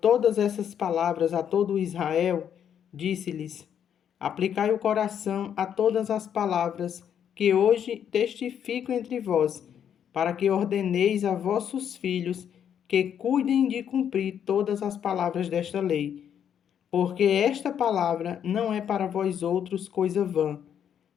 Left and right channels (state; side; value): quieter; right; 8.8 dB